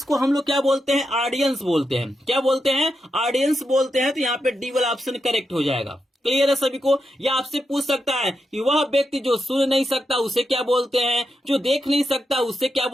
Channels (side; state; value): both; normal; correlation 0.85